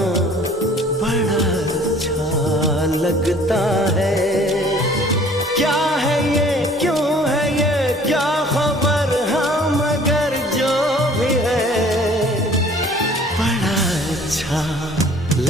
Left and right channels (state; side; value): normal; both; correlation 0.52